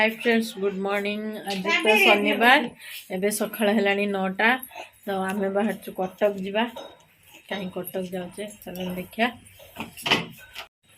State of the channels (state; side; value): identical; both; correlation 1.00